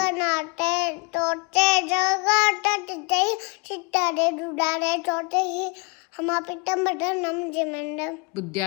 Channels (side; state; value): right; quieter; 31.7 dB